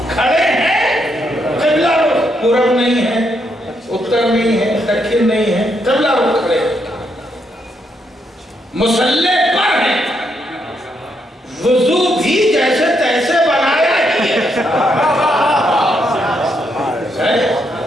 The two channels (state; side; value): normal; both; correlation 0.78